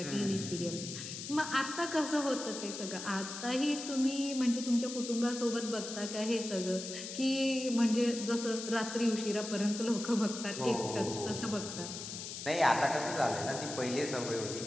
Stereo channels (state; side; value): noise; left; hiss, 8 dB below the sound